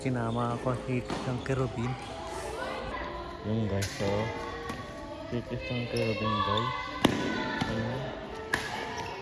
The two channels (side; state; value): both; identical; correlation 1.00